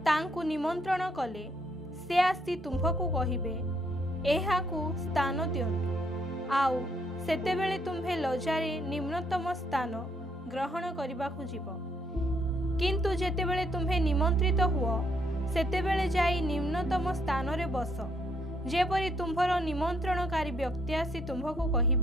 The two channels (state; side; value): normal; both; correlation 0.71